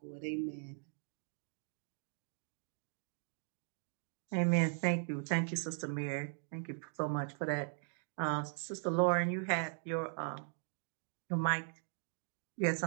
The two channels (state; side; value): silent; left; 52 dB below the other